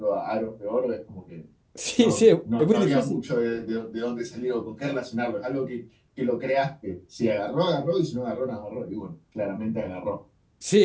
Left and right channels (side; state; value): both; identical; correlation 1.00